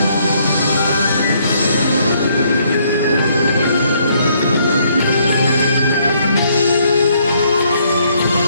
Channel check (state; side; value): inverted; both; correlation -0.68